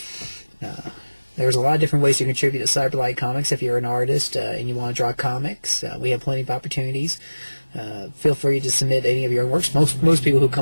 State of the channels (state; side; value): inverted; both; correlation -1.00